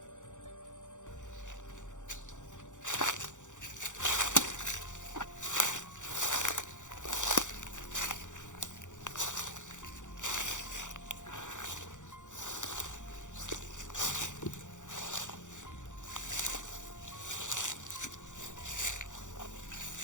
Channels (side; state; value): right; late; 0.86 ms